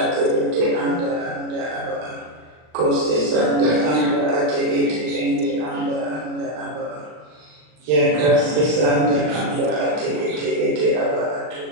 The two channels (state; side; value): late; left; 39 ms